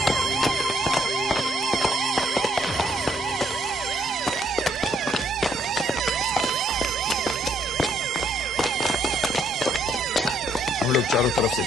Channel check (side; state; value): both; normal; correlation 0.70